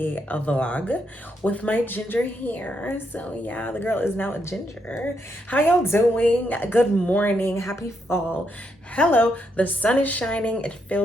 vlog with my ginger hair. So yeah, the girl is now a ginger. How y'all doing? Good morning, happy fall. Hello, the sun is shining. It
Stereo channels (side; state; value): both; normal; correlation 0.79